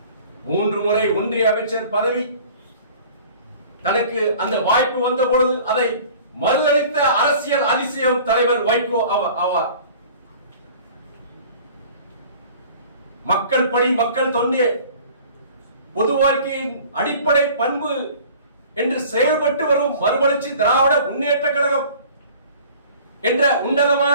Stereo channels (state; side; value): inverted; both; correlation -0.47